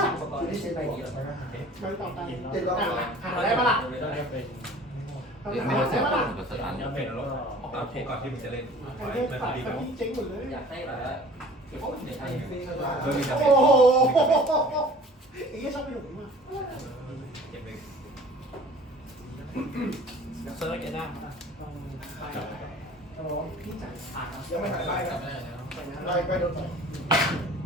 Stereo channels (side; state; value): both; normal; correlation 0.47